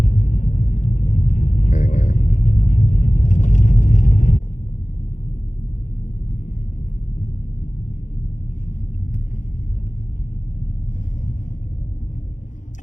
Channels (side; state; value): right; late; 0.36 ms